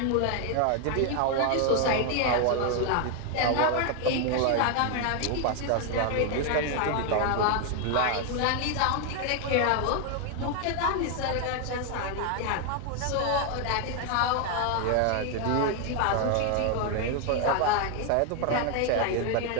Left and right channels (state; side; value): different; both; correlation 0.01